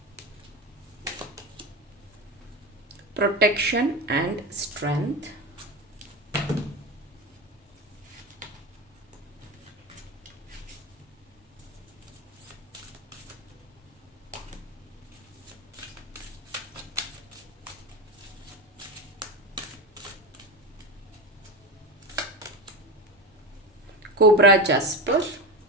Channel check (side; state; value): both; normal; correlation 0.21